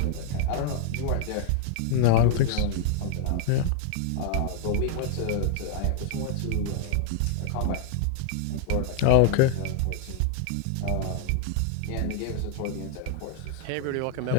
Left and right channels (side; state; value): both; different; correlation 0.00